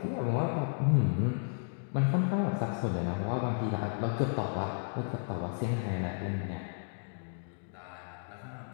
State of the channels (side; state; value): right; silent; digital silence